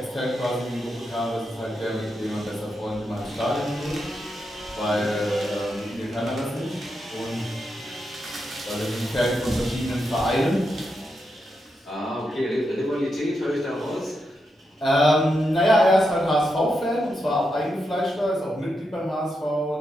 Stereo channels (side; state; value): both; normal; correlation 0.85